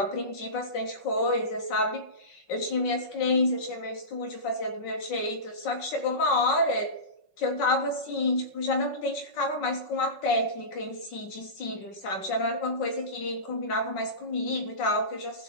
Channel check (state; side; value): late; right; 5.4 ms